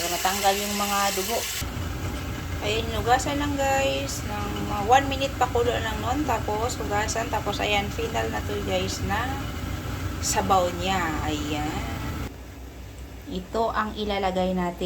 matanggal yung mga dugo. Ayan, hugasan lang guys. Ng 1 minute pakulo lang nun. Tapos, hugasan. Tapos, ayan, final na to guys na sabaw niya. Ayan. Ito ang ilalagay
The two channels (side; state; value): both; identical; correlation 1.00